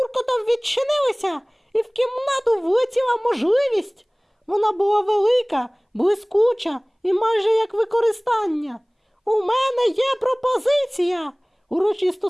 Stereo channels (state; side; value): identical; both; correlation 1.00